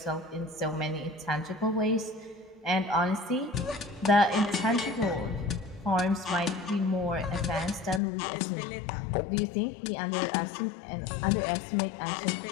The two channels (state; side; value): drops out; right; at 8.0 s